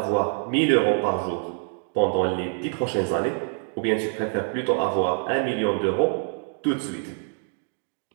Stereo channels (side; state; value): left; silent; 61 dB below the other